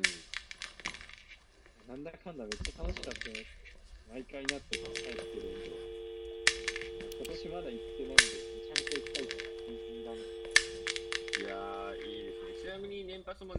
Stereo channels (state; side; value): identical; both; correlation 1.00